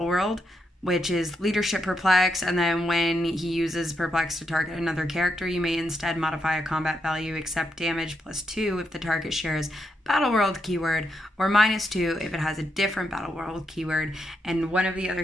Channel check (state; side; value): normal; both; correlation 0.82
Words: which is leadership perplex, and then when he uses perplex to target another character, you may instead modify a combat value except damage +2 if the target shares Battleworld keyword, or -2 if it has a different Battleworld keyword. And one of the other